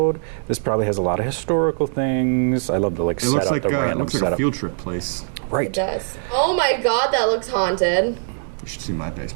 This probably has a lot of historical things. I love the It looks like the random it looks like setup. a field trip place. It Right. does. Oh my god, that looks haunted. You should see my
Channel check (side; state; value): left; silent; digital silence